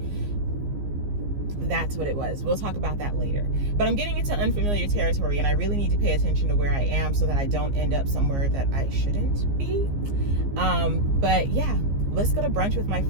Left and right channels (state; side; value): late; left; 15 ms